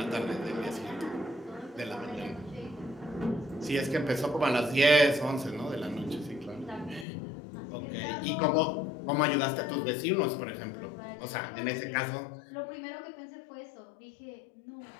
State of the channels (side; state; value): right; drops out; at 7.1 s